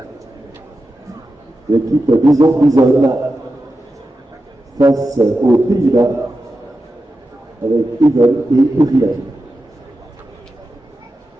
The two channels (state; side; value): normal; both; correlation 0.91